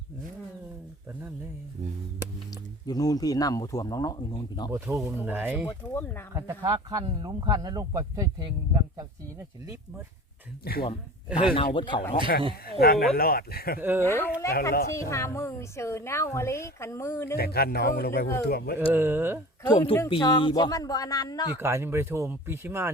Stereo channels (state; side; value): normal; both; correlation 0.39